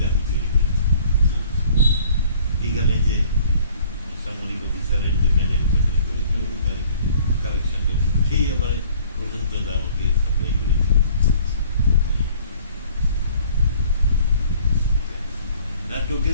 আমি তৈরি করেছি। এখানে যে সামরিক অফিসারের যে ম্যানেজ কালেকশন সেই আবার পর্যন্ত আমাকে সাপ্লাই করেছে।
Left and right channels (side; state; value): both; inverted; correlation -0.54